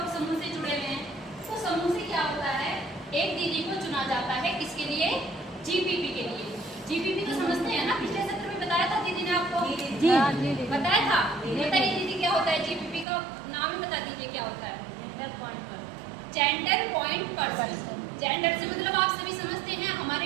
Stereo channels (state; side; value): drops out; left; at 13.1 s